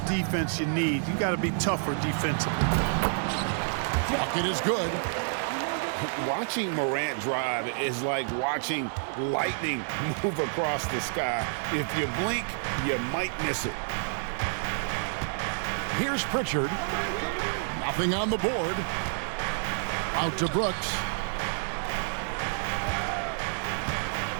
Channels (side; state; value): left; silent; digital silence